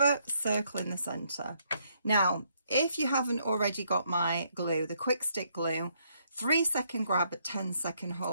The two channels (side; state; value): both; inverted; correlation -0.72